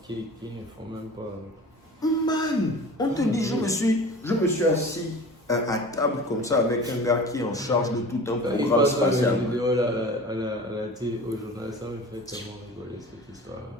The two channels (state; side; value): normal; both; correlation 0.39